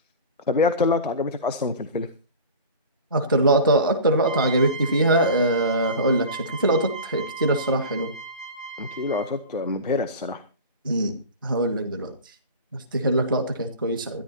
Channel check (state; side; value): inverted; both; correlation -0.34